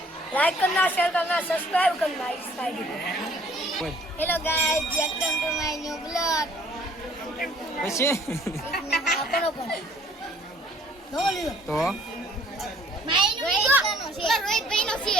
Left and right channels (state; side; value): normal; both; correlation 0.57